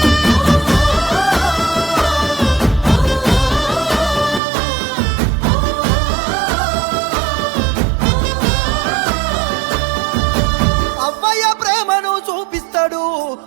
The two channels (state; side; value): drops out; left; at 4.4 s